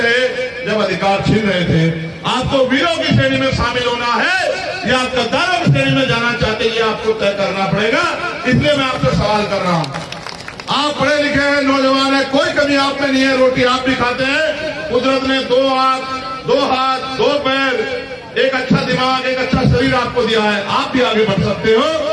रहे जब अधिकार छीन रहे थे। आपको वीरों की श्रेणी में शामिल होना है या आप गद्दारों की श्रेणी में जाना चाहते हैं, ये आपको तय करना पड़ेगा। इसलिए मैं आपसे सवाल कर रहा हूं। आप पढ़े लिखे हैं, नौजवान है, कोई कमी आप में नहीं है, रोटी आप भी खाते हैं। कुदरत ने 2 आंख, 2 हाथ, 2 पैर, एक अच्छा दिमाग, एक अच्छा शरीर आपको दिया है। आप भी आगे बढ़ सकते हो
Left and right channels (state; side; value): identical; both; correlation 1.00